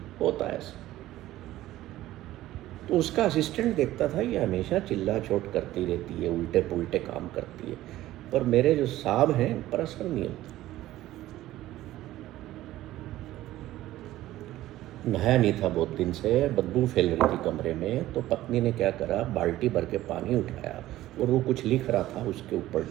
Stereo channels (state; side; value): quieter; left; 15.2 dB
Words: होता है ऐसा। तो उसका असिस्टेंट देखता था ये हमेशा चिल्ला चोट करती रहती है, उल्टे पुल्टे काम करती है, पर मेरे जो साहब हैं इन पर असर नहीं होता। नहाया नहीं था बहुत दिन से, बदबू फैल रही थी कमरे में, तो पत्नी ने क्या करा, बाल्टी भर के पानी उठाया और वो कुछ लिख रहा था उसके